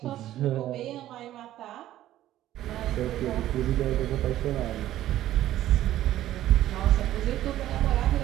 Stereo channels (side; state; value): left; quieter; 13.5 dB